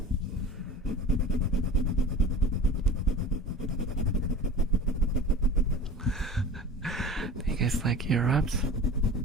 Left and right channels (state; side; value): normal; both; correlation 0.36